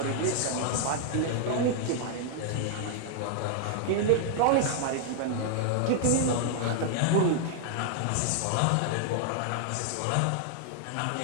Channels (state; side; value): different; both; correlation 0.00